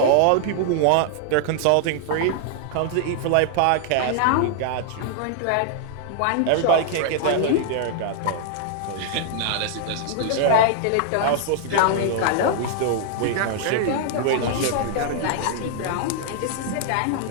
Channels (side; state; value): both; different; correlation -0.01